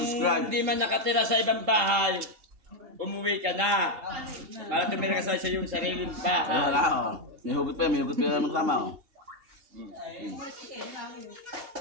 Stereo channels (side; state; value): left; late; 2.8 ms